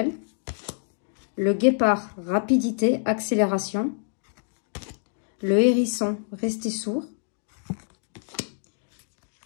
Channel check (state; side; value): silent; right; digital silence